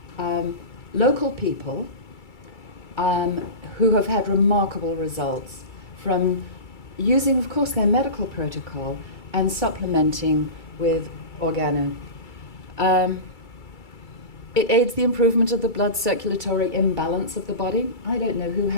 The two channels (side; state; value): right; late; 2.3 ms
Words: local people who have had remarkable results from using, of course, their medical protocol and supplementing with organo. It aids the improvement of the blood circulatory imbalance of the body. I don't know who